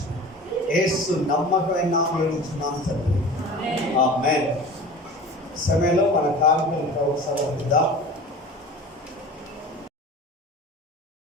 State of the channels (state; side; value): normal; both; correlation 0.37